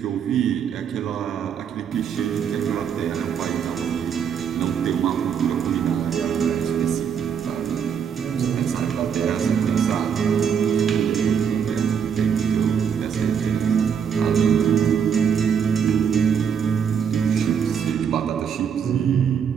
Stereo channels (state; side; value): quieter; left; 7.5 dB